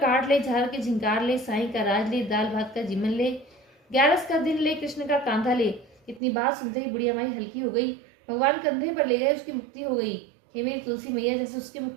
ले, झाल के झिंकार ले, साई का राज ले, दाल भात का जीवन ले, 11 का दिन ले, कृष्ण का कांधा ले। इतनी बात सुनते ही बुढ़िया माई हल्की हो गई। भगवान कंधे पर ले गए, उसकी मुक्ति हो गई। हे मेरी तुलसी मैया, जैसे उसकी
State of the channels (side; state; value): left; drops out; at 6.2 s